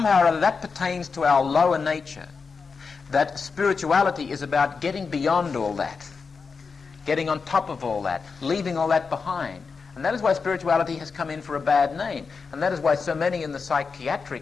or other that pertains to our lower nature, that spirituality is about getting beyond all that, getting on top of all that, leaving all that behind. And that is why spirituality has come in for a bad name. And that is why so many in the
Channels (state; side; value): quieter; right; 5.1 dB